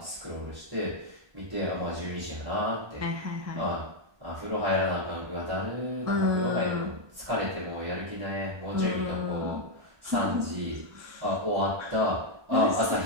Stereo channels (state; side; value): late; left; 1.2 ms